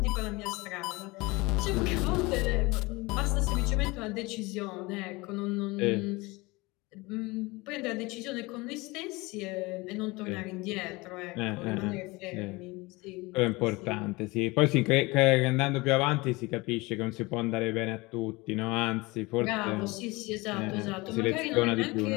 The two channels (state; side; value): quieter; right; 23.4 dB